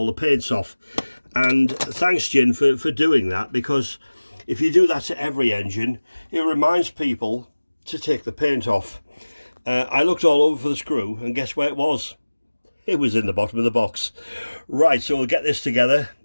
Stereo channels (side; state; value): both; inverted; correlation -1.00